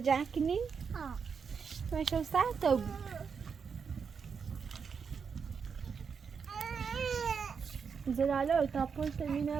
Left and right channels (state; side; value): quieter; left; 6.1 dB